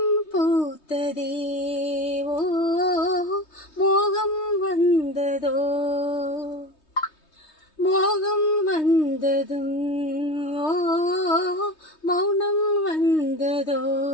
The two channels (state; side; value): late; right; 3.2 ms